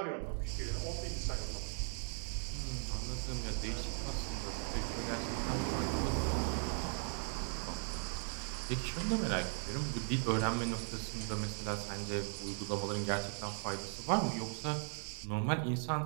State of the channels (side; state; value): left; silent; 52 dB below the other